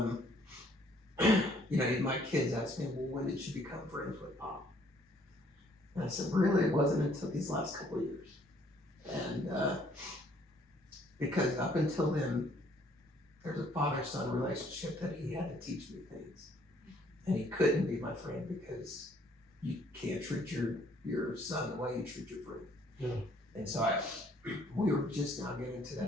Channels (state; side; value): normal; both; correlation 0.63